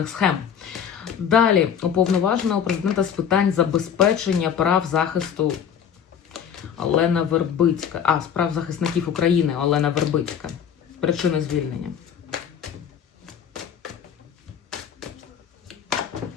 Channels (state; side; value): quieter; right; 8.1 dB